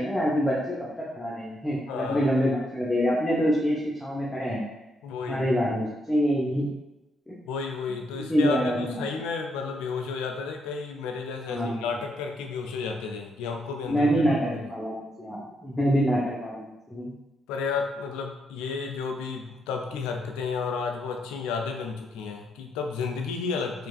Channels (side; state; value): both; normal; correlation 0.77